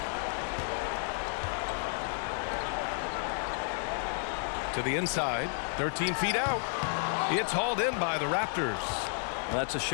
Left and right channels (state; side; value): silent; right; 57 dB below the other